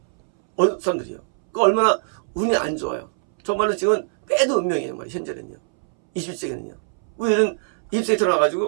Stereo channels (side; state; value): left; silent; 64 dB below the other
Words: 어느 사람들이요. 그 얼마나 운이 안 좋아요. 정말로 지금은 빼도 운명이에요. 말이에요. 현재는요. 21세기는요. 우리는 20세기